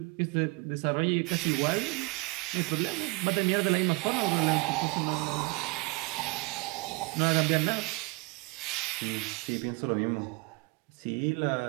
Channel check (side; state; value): left; quieter; 25.8 dB